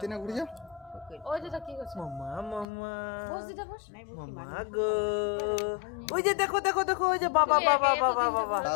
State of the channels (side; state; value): right; drops out; at 2.7 s